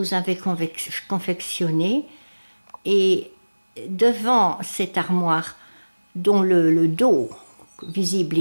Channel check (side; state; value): both; inverted; correlation -1.00